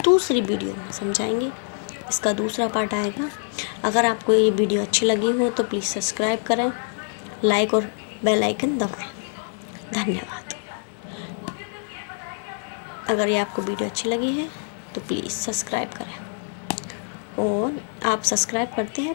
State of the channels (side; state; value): right; silent; 59 dB below the other